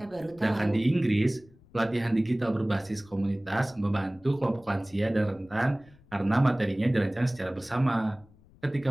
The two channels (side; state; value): left; noise; rumble, 27 dB below the sound